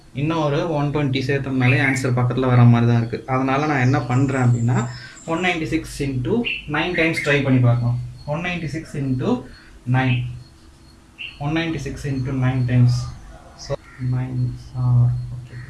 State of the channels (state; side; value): identical; both; correlation 1.00